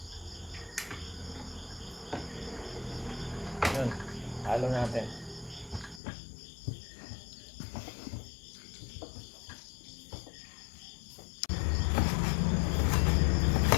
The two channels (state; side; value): drops out; right; at 6.0 s